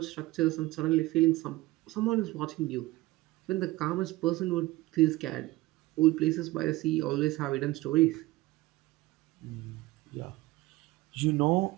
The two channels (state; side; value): quieter; left; 19.0 dB